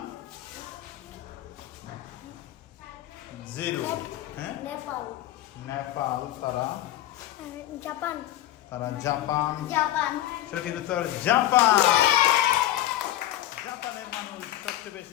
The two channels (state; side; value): quieter; right; 13.9 dB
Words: 0. হ্যাঁ, নেপাল। তারা জাপান। সঠিক উত্তর জাপান। জাপানের মানুষ সবচেয়ে